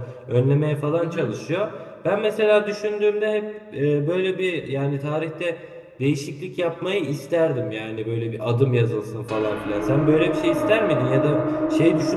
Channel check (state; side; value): identical; both; correlation 1.00